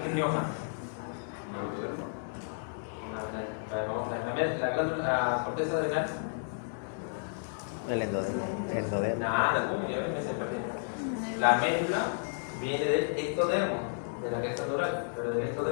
¿qué es Rioja? Vamos a ver, la corteza adrenal. El endodermo. Nada, me se perdió. La médula viene del ectodermo, de la cresta neural, pero del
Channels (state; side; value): silent; right; digital silence